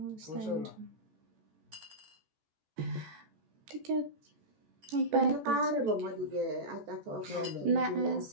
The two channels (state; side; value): late; left; 14 ms